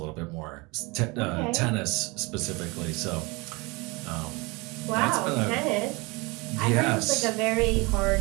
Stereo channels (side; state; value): left; quieter; 25.9 dB